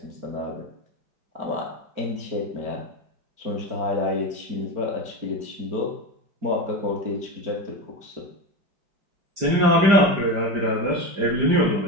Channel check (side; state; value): left; late; 5.0 ms